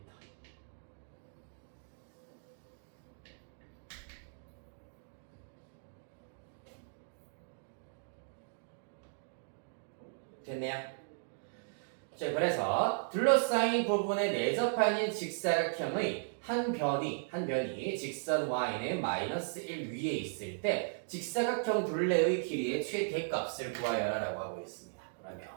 됐네요. 자, 그래서 둘러싸인 부분에 내접하는 직사각형의 한 변이 직선 y는 -1 위에 있을 때 직사각형 둘레의 길이의 최대값을 구하여라 라고 하고 있습니다.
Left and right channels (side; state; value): left; silent; digital silence